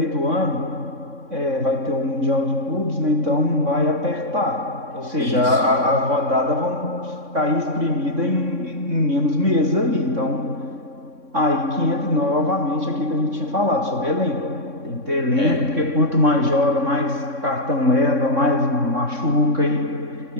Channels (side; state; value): left; late; 3.6 ms